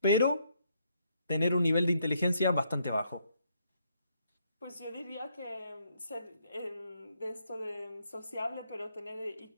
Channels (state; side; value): inverted; both; correlation -0.73